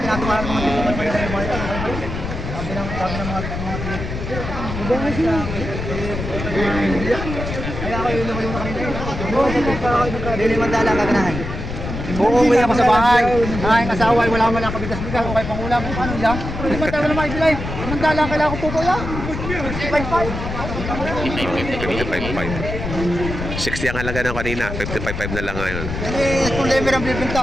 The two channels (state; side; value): noise; left; rumble, 6 dB below the sound